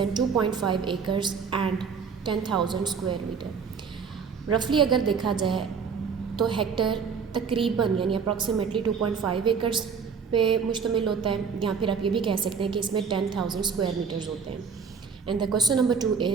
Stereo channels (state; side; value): quieter; left; 6.0 dB